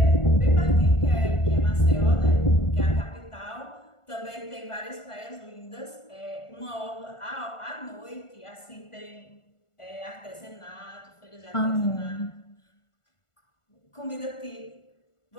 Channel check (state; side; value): late; right; 1.4 ms